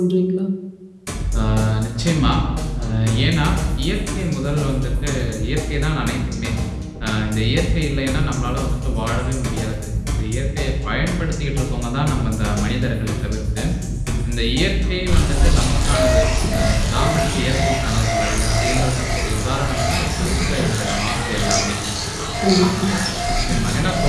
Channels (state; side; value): identical; both; correlation 1.00